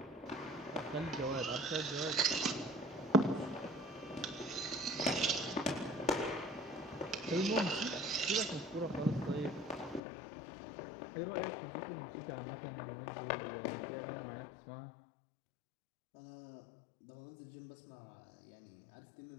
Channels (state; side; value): drops out; right; at 10.0 s